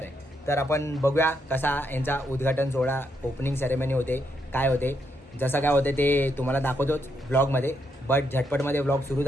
आहे. तर आपण बघूया कसा यांचा उद्घाटन सोहळा, ओपनिंग सेरेमनी होते, काय होते. जसं काय होते ते तुम्हाला दाखवतोच व्लॉगमध्ये. बट झटपटमध्ये व्लॉग सुरू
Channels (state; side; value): normal; both; correlation 0.78